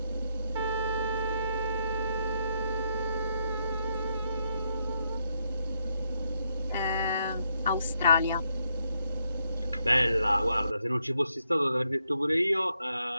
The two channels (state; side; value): inverted; both; correlation -0.78